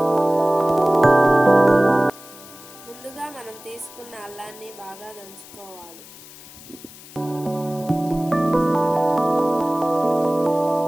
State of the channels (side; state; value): left; noise; hiss, 19 dB below the sound